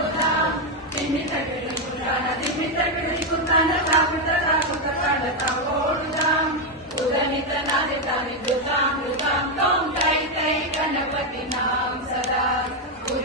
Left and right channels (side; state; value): both; normal; correlation 0.04